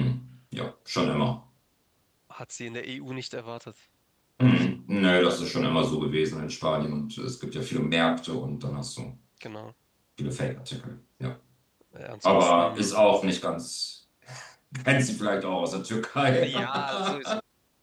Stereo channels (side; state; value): both; identical; correlation 1.00